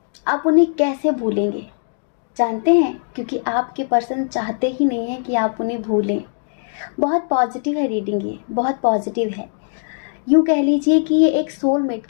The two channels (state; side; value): silent; right; digital silence